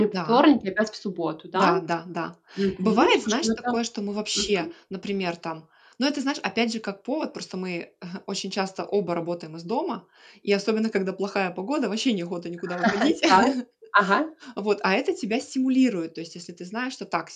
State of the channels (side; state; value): both; identical; correlation 1.00